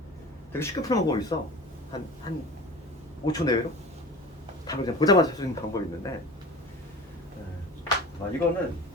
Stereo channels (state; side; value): normal; both; correlation 0.37